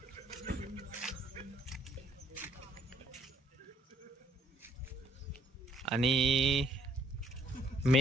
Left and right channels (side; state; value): both; normal; correlation 0.65